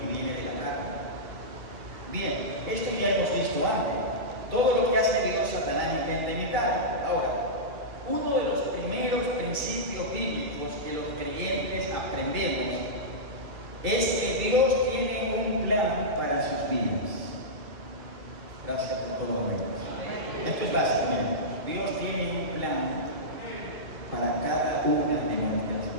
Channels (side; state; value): left; late; 2.1 ms